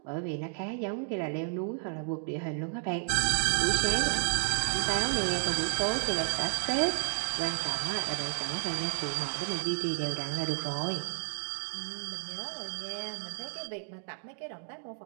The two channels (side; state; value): left; silent; digital silence